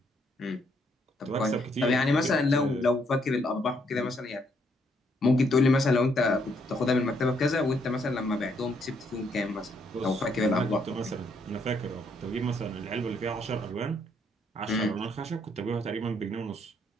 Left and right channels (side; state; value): both; normal; correlation 0.72